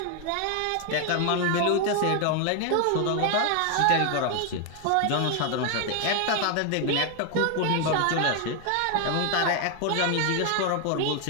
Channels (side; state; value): both; different; correlation 0.00